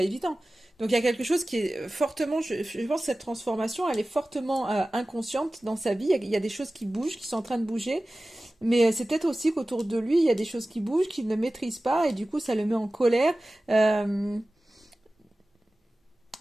évident. Donc il y a quelque chose qui est fortement, je pense que cette transformation, elle est fortement inconsciente dans sa vie. Il y a des choses qui bougent, qui sont en train de bouger, mais c'est peut-être aussi qu'autour de lui, il y a des choses qui bougent, qu'il ne maîtrise pas, et du coup, ça le met en colère. Euh,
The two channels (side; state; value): both; normal; correlation 0.97